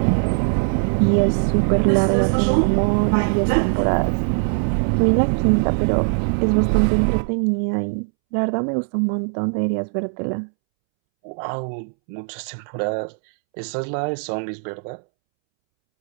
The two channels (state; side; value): silent; left; 66 dB below the other